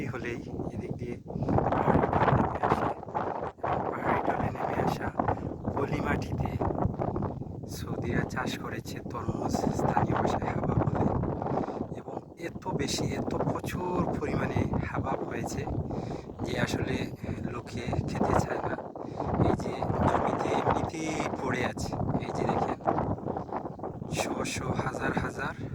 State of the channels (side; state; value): both; identical; correlation 1.00